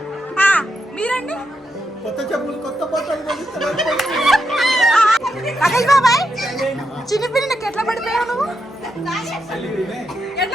మీరండి కొత్త చెప్పులు కొత్త బట్టలు రాకేష్ బాబాయ్ చిన్నపిల్లి నాకు ఎట్లా పడిపోయావు నువ్వు?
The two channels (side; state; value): both; normal; correlation 0.83